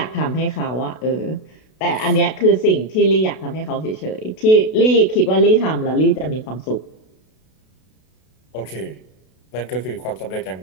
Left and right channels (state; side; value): late; right; 32 ms